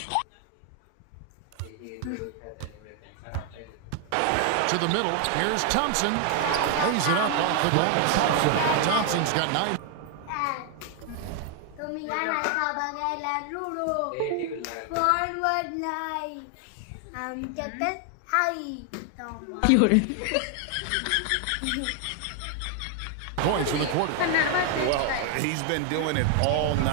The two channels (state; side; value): different; both; correlation 0.00